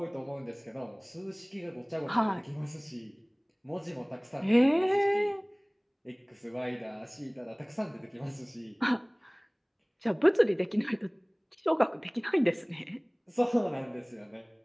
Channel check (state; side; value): identical; both; correlation 1.00